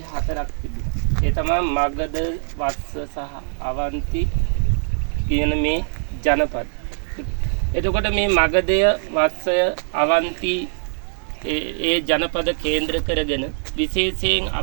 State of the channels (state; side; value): silent; left; digital silence